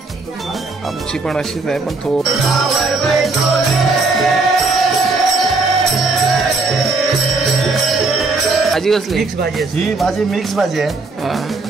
आमची पण अशीच आहे, पण भाजी कसली? मिक्स भाजी. ही भाजी मिक्स भाजी आहे.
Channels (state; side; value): quieter; left; 3.6 dB